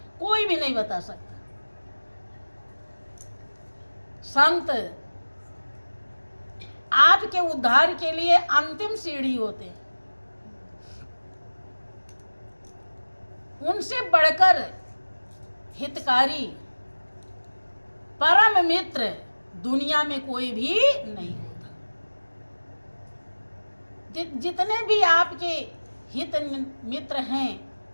कोई भी नहीं बता सकता। संत आपके उद्धार के लिए अंतिम सीढ़ी होते हैं। उनसे बढ़कर हितकारी, परम मित्र दुनिया में कोई भी नहीं होता। जितने भी आपके हित मित्र हैं,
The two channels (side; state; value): both; inverted; correlation -1.00